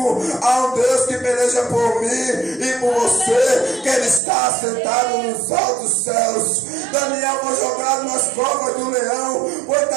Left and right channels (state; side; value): drops out; left; at 4.2 s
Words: há um Deus que peleja por mim e por você, que Ele está assentado nos altos céus. Daniel foi jogado nas covas do leão, foi